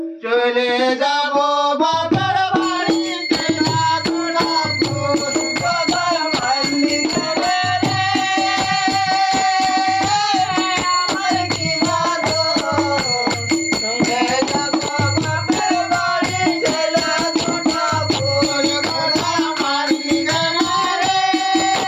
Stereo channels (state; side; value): identical; both; correlation 1.00